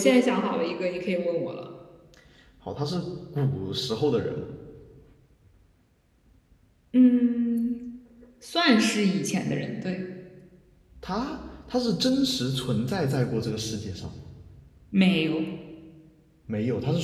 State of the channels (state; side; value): identical; both; correlation 1.00